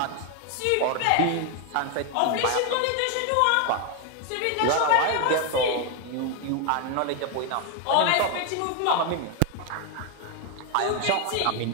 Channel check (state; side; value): different; both; correlation 0.01